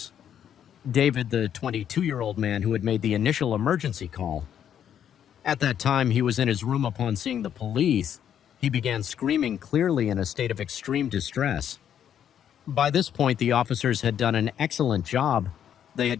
David, the 22-year-old man who had made the initial emergency call. At that time, he was in his room upon seeing the police. He began screaming, clearly in a state of extreme distress. By this point, the officers had done an excellent job. They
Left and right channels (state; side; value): quieter; right; 9.4 dB